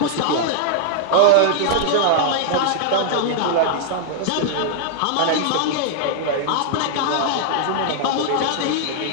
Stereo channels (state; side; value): different; both; correlation -0.01